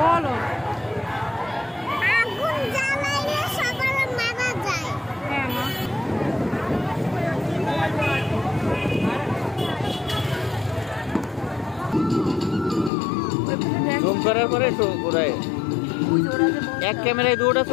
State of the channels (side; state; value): right; drops out; at 12.9 s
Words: আগুন জ্বালাইলে সবার মারা যায়। হ্যাঁ মা জুম করার পরে ঘুরায় এক ক্যামেরায় দুটা